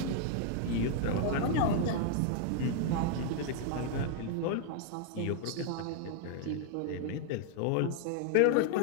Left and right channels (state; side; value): different; both; correlation 0.00